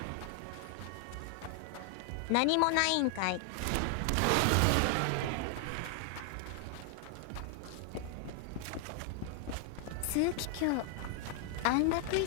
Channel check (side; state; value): both; different; correlation 0.00